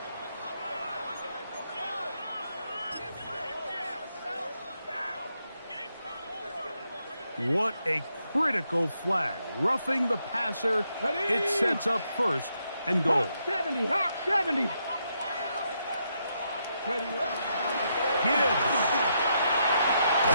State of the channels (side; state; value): both; inverted; correlation -0.79